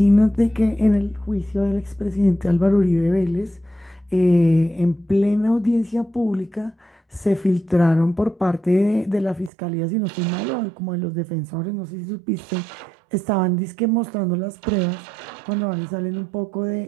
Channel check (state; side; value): drops out; left; at 9.5 s